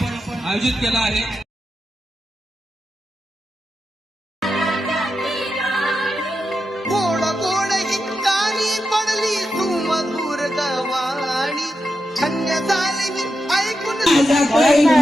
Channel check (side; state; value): both; normal; correlation 0.88